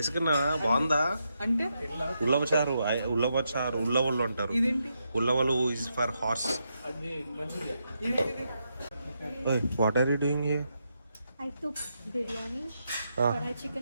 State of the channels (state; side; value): inverted; both; correlation -0.83